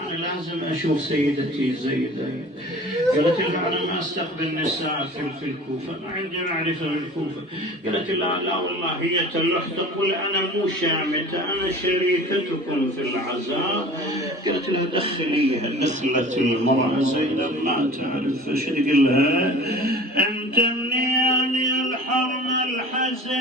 لازم اشوف سيدتي زينب. قالت لها: انا ما استقبل نساء في الكوفة، ما عندي معرفة بالكوفة. قالت: لا والله هي تلح تقول انا مو شامتة، انا شريكتكم في العزاء. قالت لها: دخليها. دخلت المرأة زينب ما تعرف فش تقول لها: انت منين الحرم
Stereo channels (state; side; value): normal; both; correlation 0.42